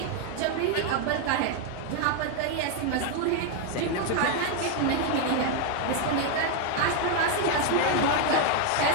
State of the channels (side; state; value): both; different; correlation 0.01